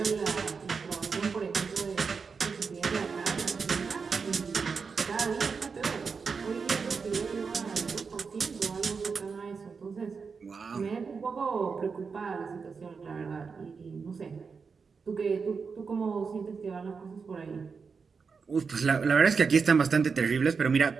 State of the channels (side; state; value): left; quieter; 5.3 dB